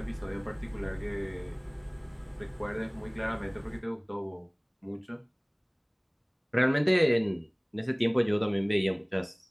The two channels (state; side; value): identical; both; correlation 1.00